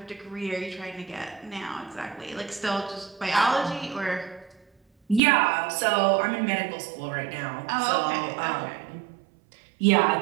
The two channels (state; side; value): drops out; left; at 5.2 s